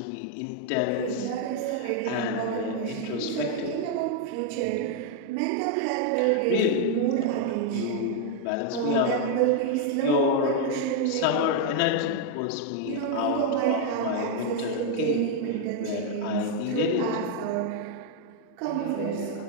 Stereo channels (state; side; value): different; both; correlation 0.00